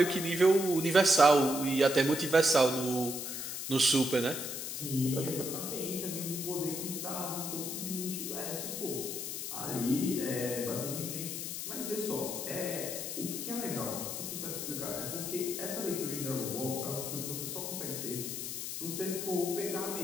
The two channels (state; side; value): noise; left; hiss, 5 dB below the sound